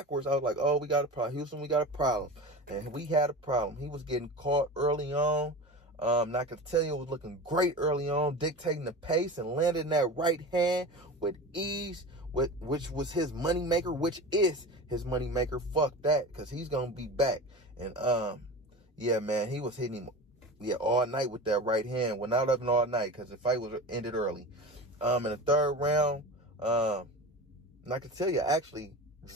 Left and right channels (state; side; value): normal; both; correlation 0.31